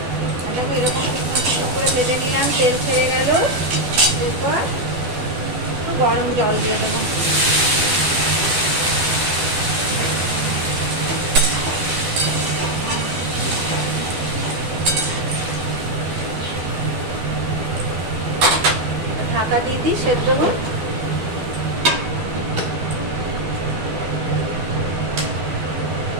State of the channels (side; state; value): left; late; 12 ms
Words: দেখো এরকম করে ভেজে নিলাম, তেল ছেড়ে গেল। এরপর একটু গরম জল দিয়ে দেবো। ঢাকা দিয়ে দিই, সেদ্ধ হোক।